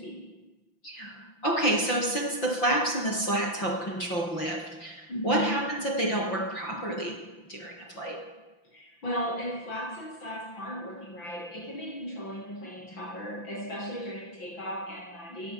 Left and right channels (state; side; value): late; right; 5.9 ms